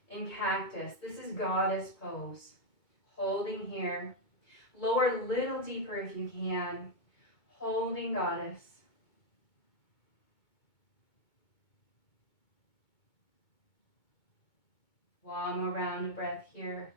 in cactus. This is goddess pose. Holding here. Lower a little deeper if you can. Holding goddess. One more round of breath here.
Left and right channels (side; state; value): right; late; 2.2 ms